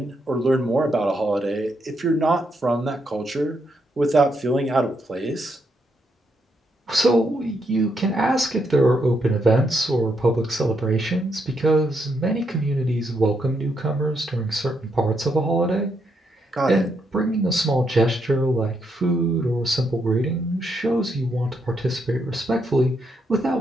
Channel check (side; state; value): both; normal; correlation 0.78